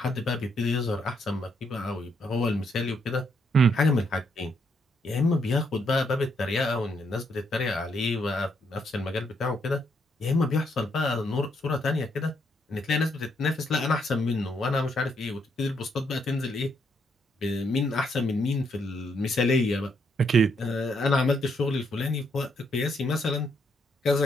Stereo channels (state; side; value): normal; both; correlation 0.75